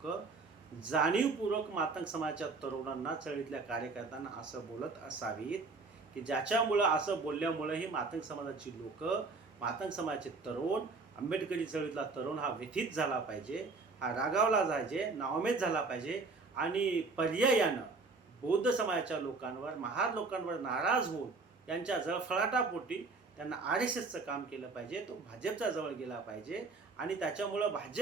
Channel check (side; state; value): left; quieter; 4.0 dB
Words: जाणीवपूर्वक मातंग समाजाच्या तरुणांना, चळवळीतल्या कार्यकर्त्यांना असं बोलत असावीत की ज्याच्यामुळं असं बोलल्यामुळं ही मातंग समाजाची लोक, मातंग समाजाचे तरुण, आंबेडकरी चळवळीतला तरुण हा व्यथित झाला पाहिजे, हा रागावला जायचे, नावमेद झाला पाहिजे आणि पर्यायानं बौद्ध समाजाच्या लोकांवर, महार लोकांवर नाराज होऊन त्यांच्या जळफळाटापोटी त्यांना RSSचं काम केलं पाहिजे, तो भाजपच्या जवळ गेला पाहिजे आणि त्याच्यामुळं